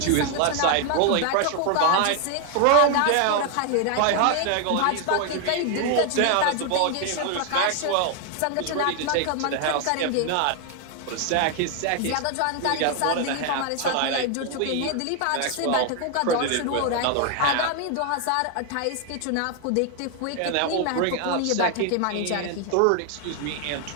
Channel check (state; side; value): different; both; correlation 0.00